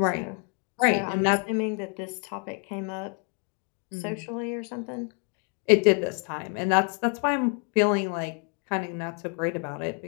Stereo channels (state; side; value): quieter; right; 36.1 dB